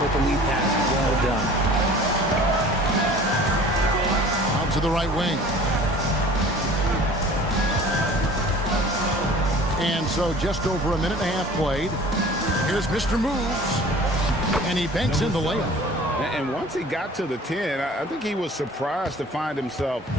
with the lead pass. Well done. to the right wing. And so just over a minute and a half played. Here's Mr. Moves. And he banks in the layup. And once he got to the 10, I think he was surprised to find himself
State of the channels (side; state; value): both; normal; correlation 0.46